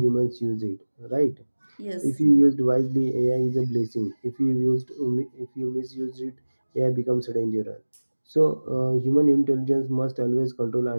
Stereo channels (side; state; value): both; inverted; correlation -1.00